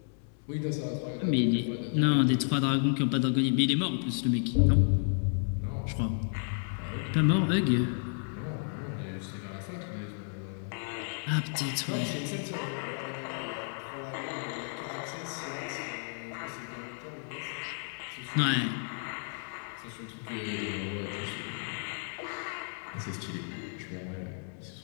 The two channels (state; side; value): silent; right; 56 dB below the other